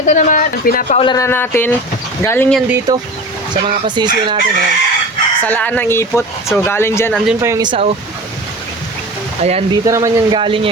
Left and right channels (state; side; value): normal; both; correlation 0.35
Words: naman, pinapaulan na natin. Galing yan dito sa mga pasisyo natin, ayan. Salaan ng ipot. So galing dyan, andun pa yung isa, oh. Ayan, dito naman yan galing